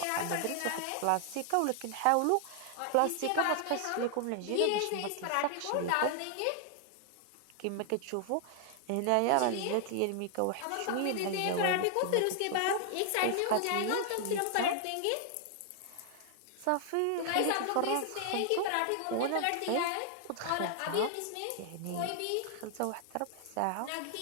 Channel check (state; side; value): different; both; correlation 0.00